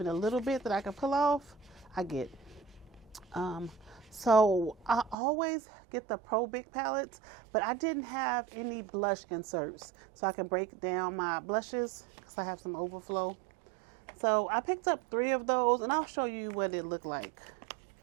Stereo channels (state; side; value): drops out; left; at 5.2 s